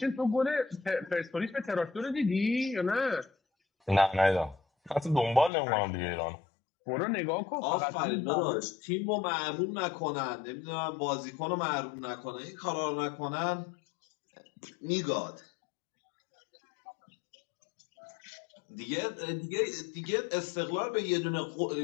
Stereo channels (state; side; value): drops out; right; at 5.5 s